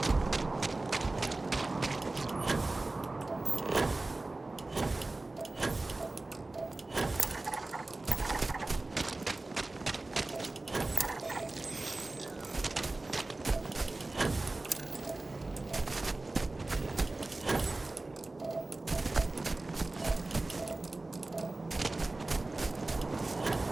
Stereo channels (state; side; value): quieter; left; 3.1 dB